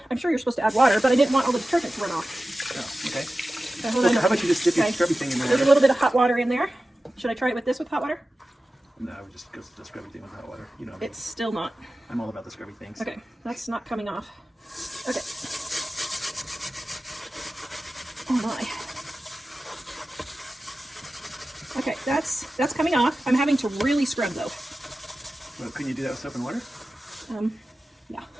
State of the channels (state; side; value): normal; both; correlation 0.95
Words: I'm sure you're supposed to add water, but I didn't want all the detergent to run off. Oh, okay. So hold on. How about you just dip your scrubby thing in there? There's a little bit of hot water in there. Should I try it with this with hot water? No, I would just go to the scrubby thing with hot water. You know, It's still not. I'm all about the scrubby things. Okay, that's not coming off. Okay. Oh my. Okay, that's coming off. I'm having to really scrub though. Well, couldn't you do that with soap and water? Yeah.